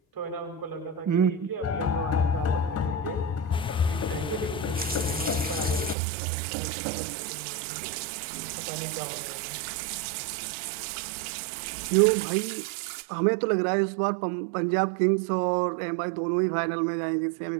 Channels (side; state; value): left; drops out; at 6.0 s